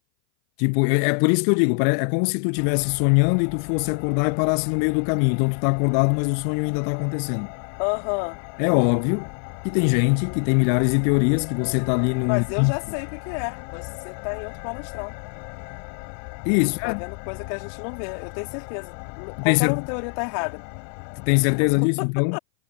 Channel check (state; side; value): silent; right; 58 dB below the other